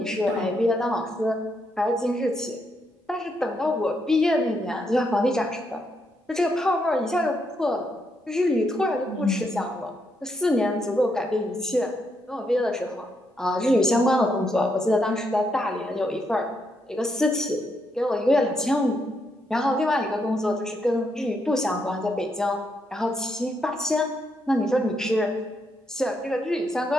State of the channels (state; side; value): normal; both; correlation 0.78